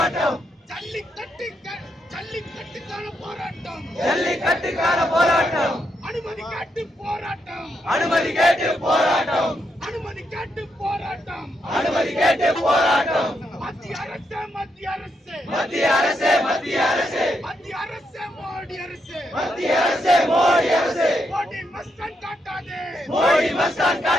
ஜல்லிக்கட்டுக்கான போராட்டம், ஜல்லிக்கட்டுக்கான போராட்டம், அனுமதி கேட்டு போராட்டம், அனுமதி கேட்டு போராட்டம், அனுமதி கேட்டு போராட்டம், அனுமதி கேட்டு போராட்டம். மத்திய அரசு, மத்திய அரசு, மத்திய அரசே, மத்திய அரசே, மத்திய அரசு, மோடி அரசு, மத்திய அரசே, மோடி அரசே, மோடி மஸ்தான் காட்டாதே, மோடி மஸ்தான்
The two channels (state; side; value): normal; both; correlation 0.80